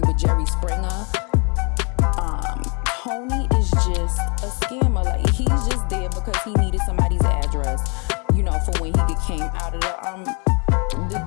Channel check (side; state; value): right; quieter; 34.4 dB